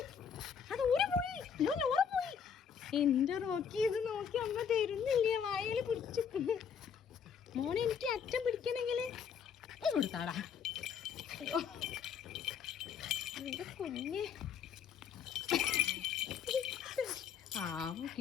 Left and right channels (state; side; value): quieter; right; 7.3 dB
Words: അത് ഊരി പോയി. ഓറ പോയി. എന്റെ റോക്കി ഇത് നോക്കി അമ്മ തരുന്നില്ല. വായയിൽ പിടിച്ചു. മോനെ എനിക്ക് അച്ഛൻ പിടിക്കണമെങ്കിൽ കൊടുത്താടാ. എന്റെ കുഞ്ഞ് ആവോ